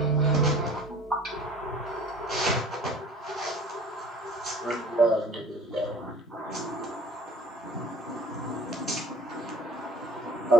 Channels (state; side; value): normal; both; correlation 0.47